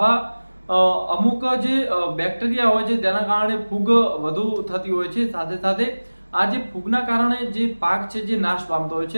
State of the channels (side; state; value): both; inverted; correlation -1.00